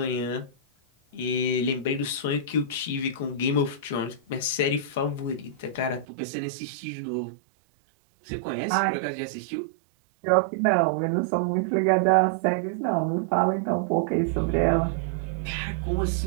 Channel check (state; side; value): drops out; left; at 6.1 s